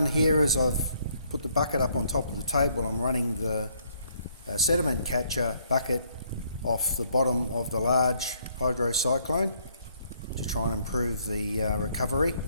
here is I've put the bucket up on top of the table. I'm running the sediment catcher bucket off the bottom of the large hydrocyclone to try and improve the recovery.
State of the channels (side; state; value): both; inverted; correlation -0.67